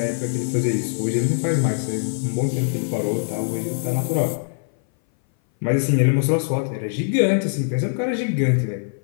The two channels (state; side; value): silent; right; 59 dB below the other